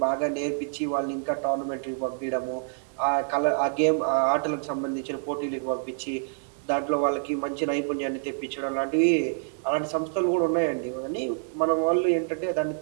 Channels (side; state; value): left; silent; 60 dB below the other